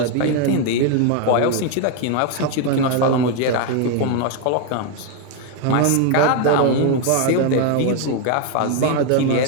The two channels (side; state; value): both; different; correlation 0.01